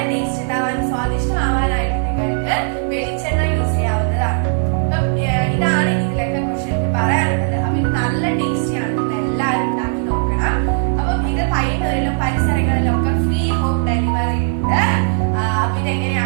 ടേസ്റ്റ് ഉണ്ടാവാനും സ്വാദിഷ്ടമാവാനായിട്ട് നിങ്ങൾക്ക് വെളിച്ചെണ്ണ യൂസ് ചെയ്യാവുന്നതാണ്. അപ്പം ഇതാണ് ഇതിലൊക്കെ കുറിച്ച് എനിക്ക് പറയാനുള്ളത്. അപ്പൊ ഇത് നല്ല ടേസ്റ്റിയാണ്. നിങ്ങൾ എല്ലാവരും ഉണ്ടാക്കി നോക്കണം. അപ്പം ഇത് പയ്യന്നൂരിലും പരിസരങ്ങളിലും ഒക്കെ ഫ്രീ ഹോം ഡെലിവറി ഉണ്ട്. അപ്പൊ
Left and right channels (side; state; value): left; silent; digital silence